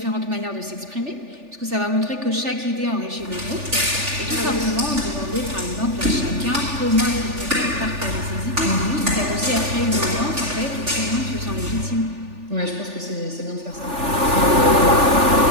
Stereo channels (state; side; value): late; left; 3.4 ms